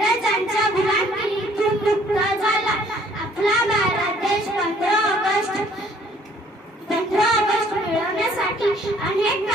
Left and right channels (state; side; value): normal; both; correlation 0.60